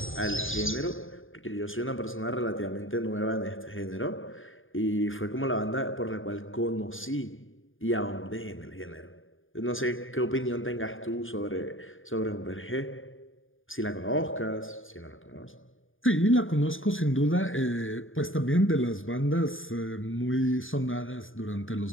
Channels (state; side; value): late; right; 0.58 ms